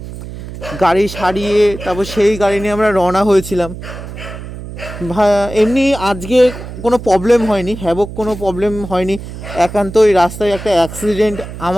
গাড়ি সারিয়ে তারপর সেই গাড়ি নিয়ে আমরা রওনা হয়েছিলাম। এমনি আজকে কোনো প্রবলেম হয়নি, হ্যাভক কোনো প্রবলেম হয়নি। একান্ত ওই রাস্তায় একটা অ্যাক্সিডেন্ট,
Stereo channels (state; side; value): noise; right; hum, 11 dB below the sound